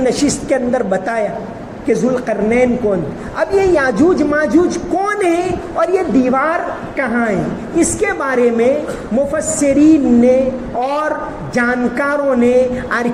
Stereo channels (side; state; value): both; identical; correlation 1.00